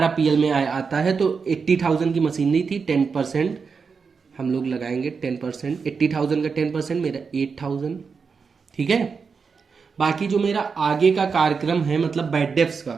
पीएल में आता है। तो 80,000 की मशीनरी थी, 10% हम लोग लगाएंगे, 10%, 80,000 का 10% मेरा 8,000। ठीक है, बाकी जो मेरा आगे का कार्यक्रम है, मतलब बैड डेब्ट्स का,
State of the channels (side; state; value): left; quieter; 5.4 dB